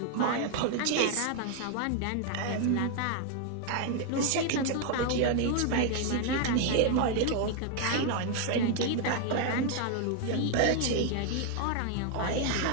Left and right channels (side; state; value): both; different; correlation 0.00